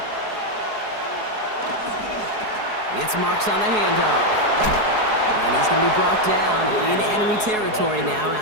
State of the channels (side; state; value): left; late; 4.7 ms